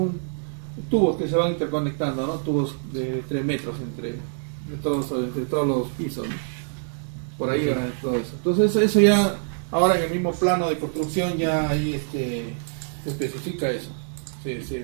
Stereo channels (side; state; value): left; silent; digital silence